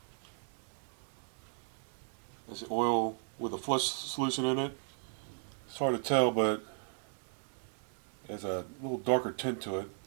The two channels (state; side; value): silent; left; digital silence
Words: That's the oil with a flush solution in it. It's hard to tell, but it has a little darker tint to it.